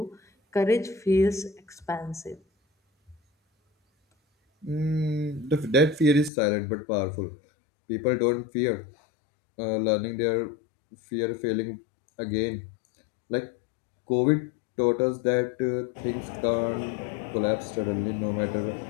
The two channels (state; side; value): drops out; right; at 6.3 s